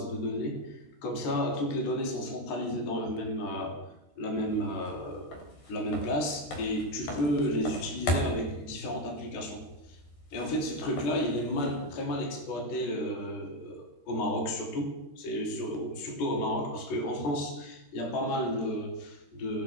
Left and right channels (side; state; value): right; late; 14 ms